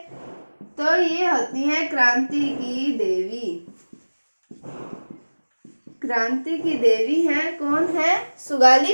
तो ये होती है क्रांति की देवी। क्रांति की देवी है, कौन है,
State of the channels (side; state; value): both; inverted; correlation -1.00